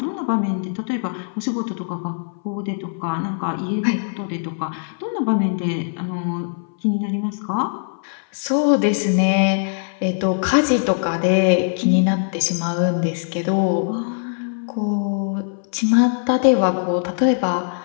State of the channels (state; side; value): silent; right; 60 dB below the other